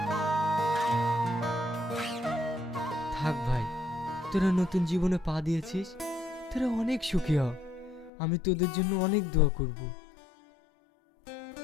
থাক ভাই, তোরা নতুন জীবনে পা দিয়েছিস, তোরা অনেক সুখী হ, আমি তোদের জন্য অনেক দোয়া করব।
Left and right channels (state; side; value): drops out; right; at 8.1 s